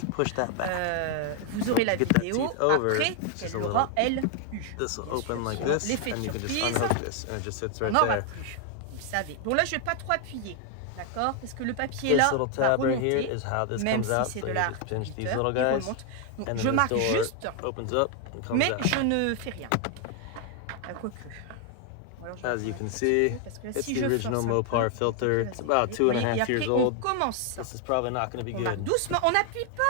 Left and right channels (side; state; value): both; different; correlation 0.01